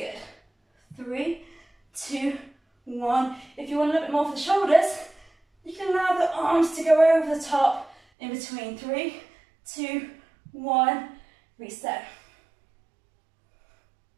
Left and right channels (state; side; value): drops out; left; at 8.0 s